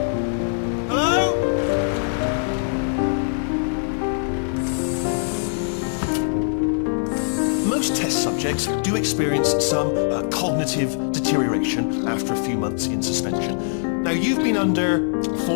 Hello? Most test subjects do experience some cognitive deterioration after a few months in suspension. Now, you've been under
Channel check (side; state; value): right; silent; 56 dB below the other